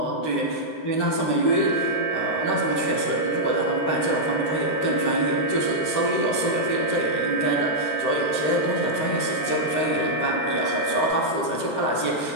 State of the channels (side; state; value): right; late; 13 ms